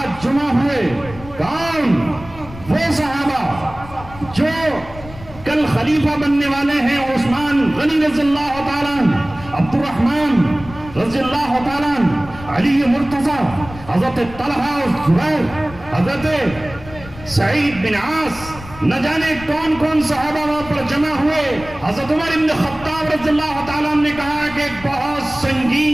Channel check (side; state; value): left; noise; rumble, 16 dB below the sound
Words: جمع ہوئے، کون؟ وہ صحابہ جو کل خلیفہ بننے والے ہیں، عثمان غنی رضی اللہ تعالیٰ عنہ، عبد الرحمن رضی اللہ تعالیٰ عنہ، علی مرتضی، حضرت طلحہ اور زبیر، حضرت سعید بن عاص، نہ جانے کون کون صحابہ وہاں پر جمع ہوئے. حضرت عمر ابن خطاب رضی اللہ تعالیٰ عنہ نے کہا کہ ایک بہت